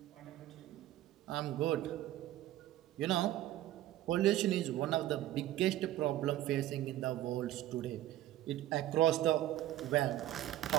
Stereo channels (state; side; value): quieter; left; 14.1 dB